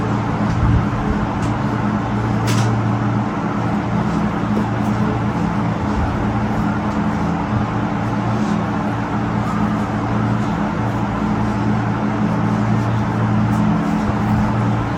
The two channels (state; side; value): identical; both; correlation 1.00